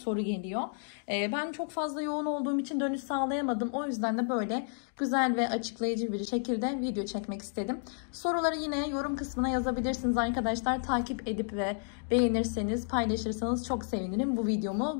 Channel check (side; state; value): right; silent; digital silence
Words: geliyor. Ben çok fazla yoğun olduğum için dönüş sağlayamadım. O yüzden de böyle güzel ve açıklayıcı bir şekilde video çekmek istedim. Soruları yine yorum kısmına yazabilirsiniz arkadaşlar. Takip edip ve beğenirseniz, paylaşırsanız çok sevinirim. Bu